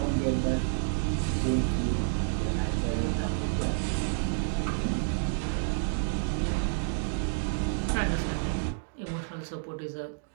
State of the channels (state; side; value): silent; left; digital silence